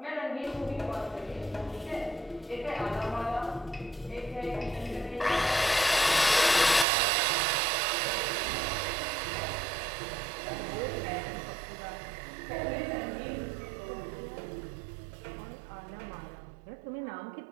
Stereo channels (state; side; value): drops out; left; at 6.9 s